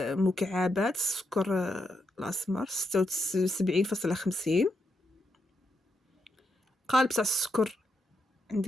مكعبات السكر الاسمر 76.50. قالب تاع السكر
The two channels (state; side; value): normal; both; correlation 0.81